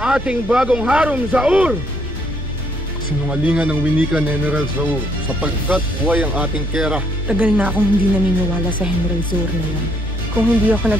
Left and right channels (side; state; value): both; normal; correlation 0.69